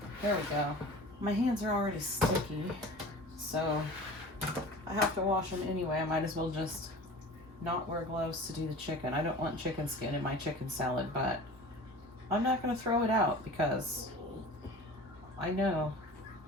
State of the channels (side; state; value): both; normal; correlation 0.39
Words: There we go. My hands are already sticky, so I have to wash them anyway. I might as well just not wear gloves to do the chicken. I don't want chicken skin in my chicken salad, but I'm not going to throw it out because I know